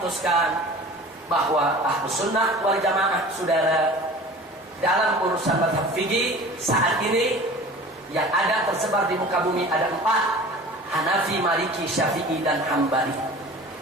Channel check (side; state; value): both; normal; correlation 0.41